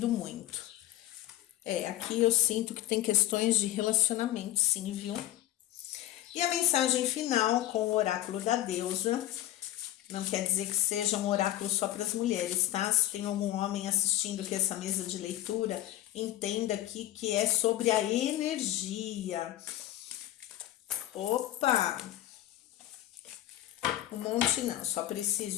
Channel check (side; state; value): right; quieter; 14.1 dB